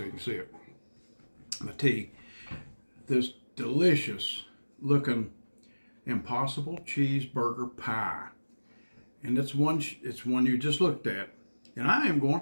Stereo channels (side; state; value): both; inverted; correlation -1.00